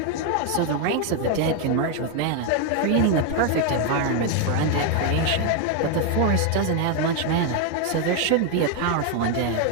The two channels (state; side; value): different; both; correlation 0.01